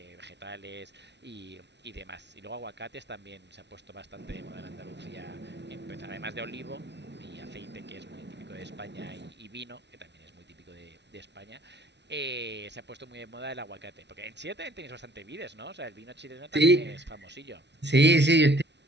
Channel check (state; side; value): late; left; 0.50 ms